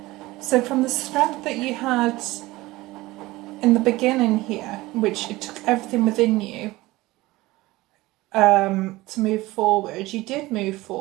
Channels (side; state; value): left; quieter; 19.3 dB